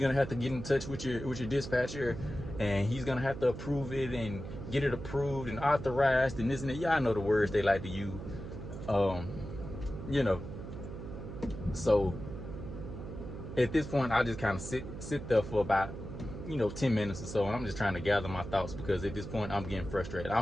have to get in touch with your dispatcher, and he's gonna have to approve it and get it approved and authorized and this and that. Y'all know the words they like to use. You know. So at this point, I just kind of sit there for about, you know, 10 minutes or so, and I'm just trying to gather my thoughts, because at this point I'm getting frustrated.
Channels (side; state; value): right; noise; hum, 9 dB below the sound